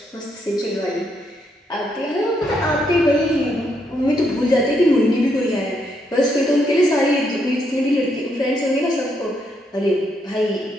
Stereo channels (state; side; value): normal; both; correlation 0.76